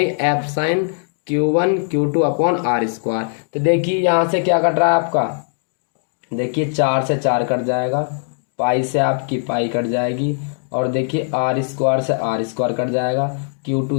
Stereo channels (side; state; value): right; silent; digital silence